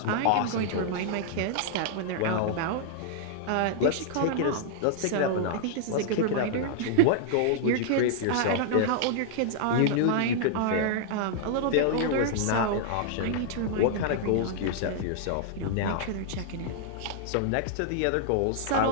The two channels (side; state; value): both; different; correlation -0.01